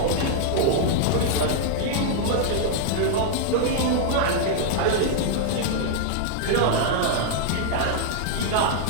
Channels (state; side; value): different; both; correlation -0.01